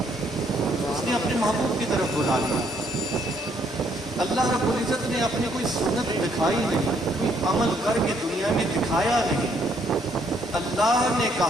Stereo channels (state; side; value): normal; both; correlation 0.69